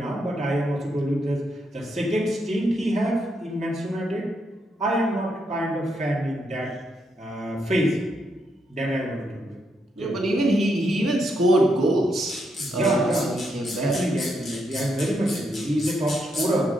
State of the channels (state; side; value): normal; both; correlation 0.79